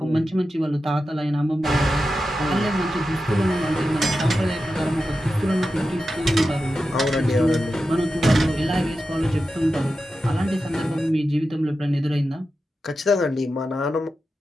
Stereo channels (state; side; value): normal; both; correlation 0.91